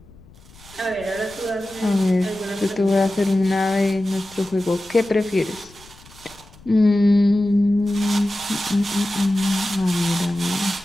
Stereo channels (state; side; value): noise; left; rumble, 24 dB below the sound